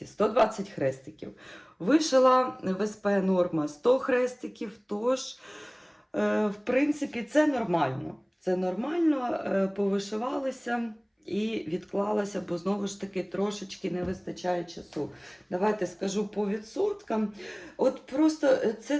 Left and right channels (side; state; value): both; identical; correlation 1.00